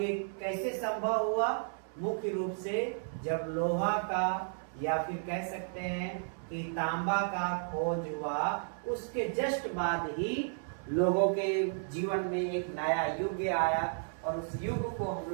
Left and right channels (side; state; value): left; silent; 56 dB below the other